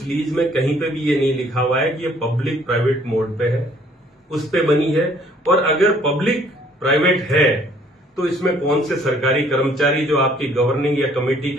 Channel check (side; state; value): both; normal; correlation 0.60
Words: लीज में कहीं पे भी ये नहीं लिखा हुआ है कि ये पब्लिक प्राइवेट मोड पे है, उस पे बनी है। और अगर पब्लिक प्राइवेट है तो इसमें कौन से सरकारी कर्मचारी जो आपकी गवर्निंग या कमेटी